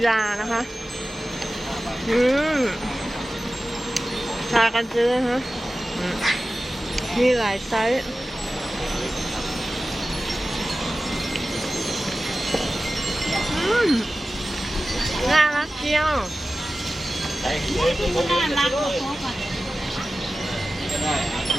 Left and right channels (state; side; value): normal; both; correlation 0.95